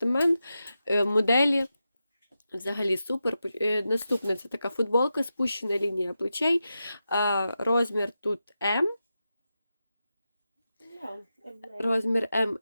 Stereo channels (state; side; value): inverted; both; correlation -0.90